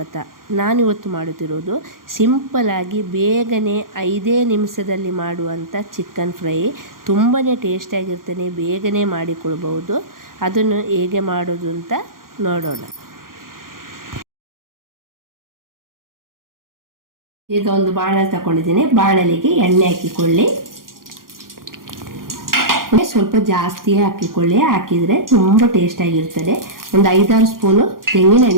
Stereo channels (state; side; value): late; left; 0.91 ms